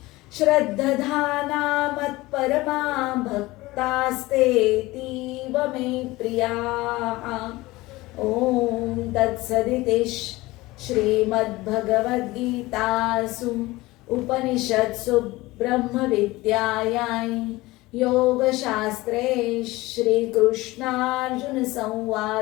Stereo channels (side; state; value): right; quieter; 19.9 dB